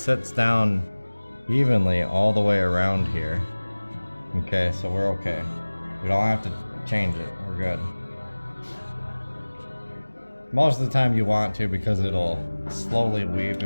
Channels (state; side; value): inverted; both; correlation -1.00